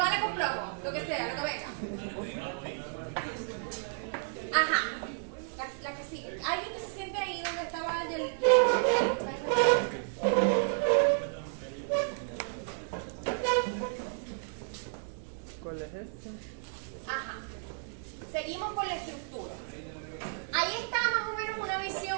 con plomo, lo que sea, lo que venga. Ajá, la que sigue. Alguien que se siente ahí donde estaba el... ¿Cuál es este? Ajá. Seguimos con la estructura. Ahí está más o menos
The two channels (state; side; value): silent; left; digital silence